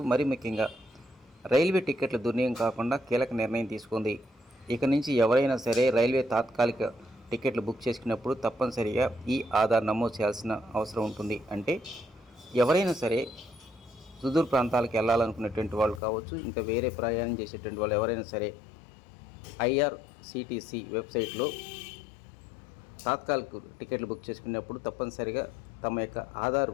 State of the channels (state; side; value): drops out; right; at 16.0 s